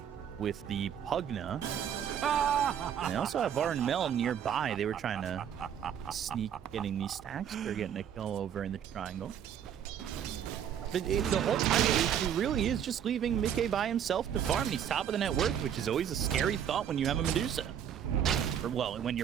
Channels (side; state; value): left; quieter; 9.1 dB